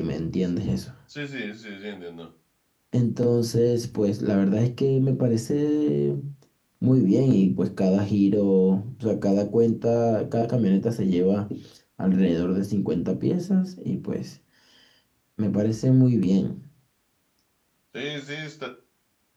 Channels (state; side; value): identical; both; correlation 1.00